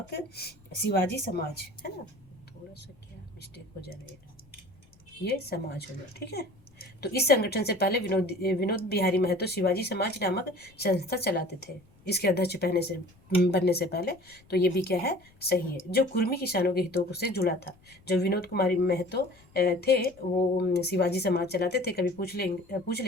समाज, है ना, थोड़ा मिस्टेक हो जा रही है, ये समाज होगा, ठीक है। तो इस संगठन से पहले विनोद बिहारी महतो शिवाजी समाज नामक संस्था चलाते थे, इसके अध्यक्ष बनने से पहले। तो ये भी क्या है, सही है, जो कुर्मी किसानों के हितों से जुड़ा था। जो विनोद कुमारी महतो थे वो शिवाजी समाज चलाते थे। कभी पूछ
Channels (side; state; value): left; noise; rumble, 29 dB below the sound